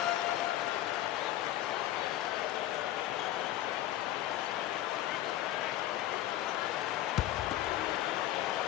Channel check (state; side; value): quieter; right; 13.7 dB